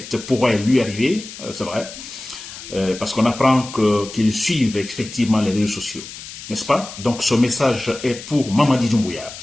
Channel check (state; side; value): noise; left; hiss, 13 dB below the sound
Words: pourraient lui arriver, c'est vrai, parce qu'on apprend qu'ils suivent effectivement les réseaux sociaux, n'est-ce pas? Donc ce message est pour Mamadi Doumbouya.